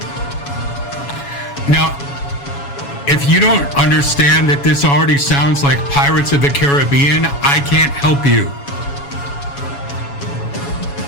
Now, if you don't understand that this already sounds like Pirates of the Caribbean, I can't help you.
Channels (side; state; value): right; late; 7.1 ms